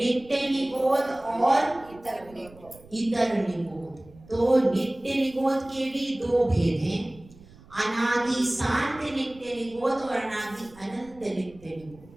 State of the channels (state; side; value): noise; right; rumble, 23 dB below the sound